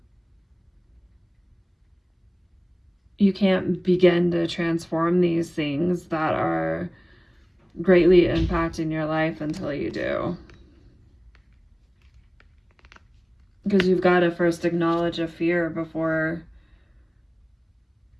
You can't begin to transform these things that are greatly impacting your life until you do. Because you've got to first acknowledge a fear before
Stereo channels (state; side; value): identical; both; correlation 1.00